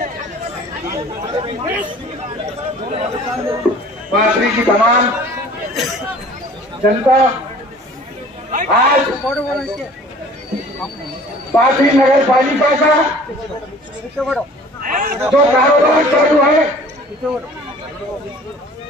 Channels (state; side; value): normal; both; correlation 0.49